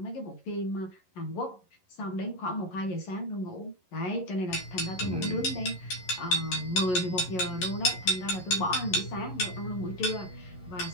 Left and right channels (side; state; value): right; late; 11 ms